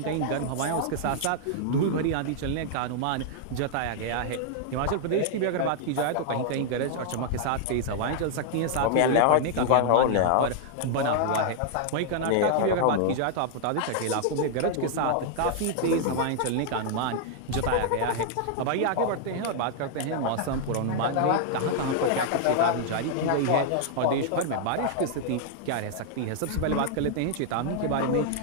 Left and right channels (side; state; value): both; different; correlation -0.01